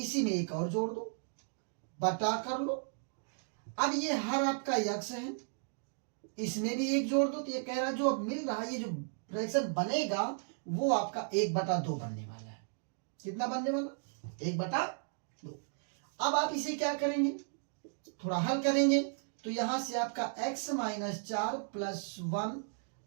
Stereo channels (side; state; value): left; silent; digital silence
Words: में एक और जोड़ दो, बटा कर लो। अब ये हर आपका x है, इसमें भी एक जोड़ दो, तो ये कह रहा है जो अब मिल रहा है, ये जो फ्रैक्शन बनेगा वो आपका 1/2 बनने वाला है। कितना बनने वाला, 1/2। अब आप इसे क्या करेंगे, थोड़ा हल करेंगे, तो यहां से आपका x माइनस 4 प्लस 1